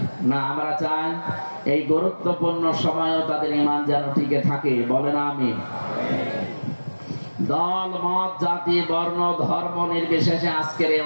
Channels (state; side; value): inverted; both; correlation -1.00